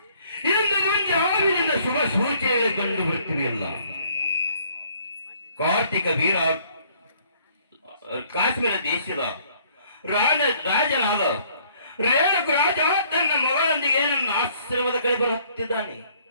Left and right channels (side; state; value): both; inverted; correlation -0.61